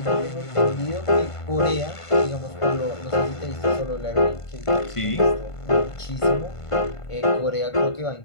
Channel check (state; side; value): late; right; 1.5 ms